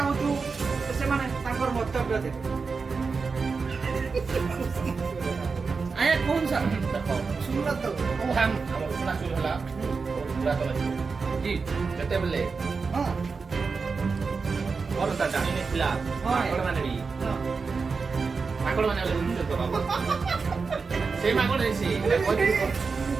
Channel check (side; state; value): left; quieter; 4.8 dB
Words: से माने ताकर मंतव्य दे आया कौन सा सुनला तो ओ हम उसना चाउल हला पूरा तो जी जते बले हां और ता जानी ने खिला माकड़ माने भी माकड़ माने ले उन तो बाबा से माकड़ है से